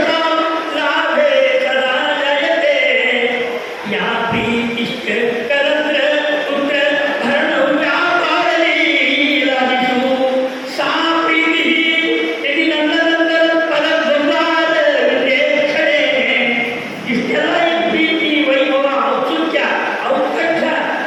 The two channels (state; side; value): identical; both; correlation 1.00